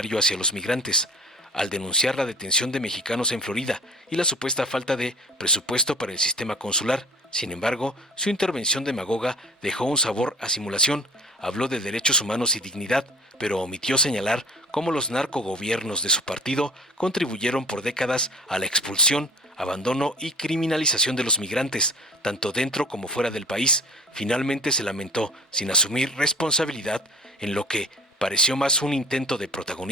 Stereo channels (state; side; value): normal; both; correlation 0.44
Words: hacia los migrantes, al denunciar la detención de mexicanos en Florida y la supuesta falta de presupuesto para el sistema consular. Sin embargo, su intervención demagoga dejó un sabor a simulación. Habló de derechos humanos y dignidad, pero omitió señalar cómo los narcogobiernos de su partido contribuyeron por décadas a la expulsión, abandono y criminalización de los migrantes, tanto dentro como fuera del país. Finalmente se lamentó, sin asumir responsabilidad, en lo que pareció más un intento de